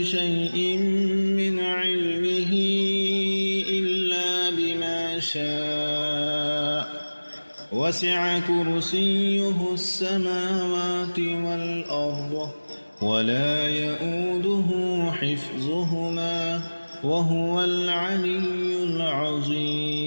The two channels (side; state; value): both; inverted; correlation -1.00